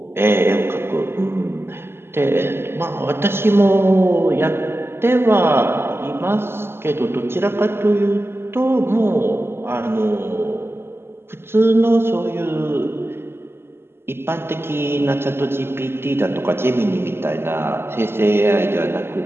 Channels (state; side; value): late; left; 0.12 ms